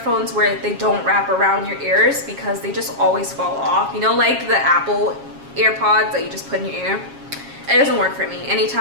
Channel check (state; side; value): late; left; 7.3 ms